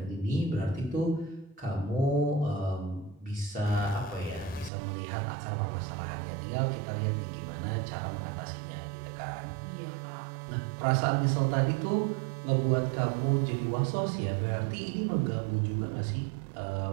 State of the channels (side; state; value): left; drops out; at 4.7 s